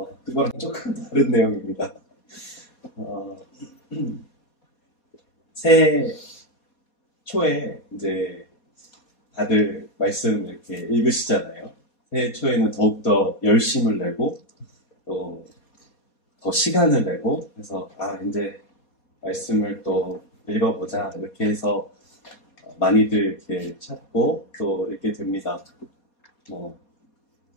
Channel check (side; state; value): right; late; 4.2 ms